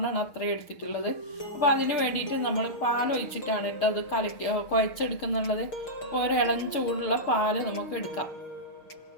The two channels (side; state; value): right; late; 6.7 ms